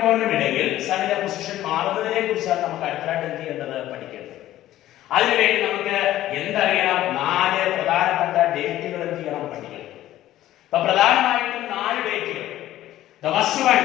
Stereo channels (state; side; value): quieter; right; 14.0 dB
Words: ഇടയിൽ സണ്ണിന്റെ പൊസിഷൻ മാറുന്നതിനെ കുറിച്ചാണ് നമുക്ക് അടുത്തായിട്ട് എന്ത് ചെയ്യേണ്ടത്? പഠിക്കേണ്ടത്. അതിനുവേണ്ടി നമുക്ക് എന്തറിയണം? 4 പ്രധാനപ്പെട്ട ഡേറ്റുകൾ എന്ത് ചെയ്യണം? പഠിക്കണം. അപ്പൊ പ്രധാനമായിട്ടും 4 ഡേറ്റുകൾ. The first one,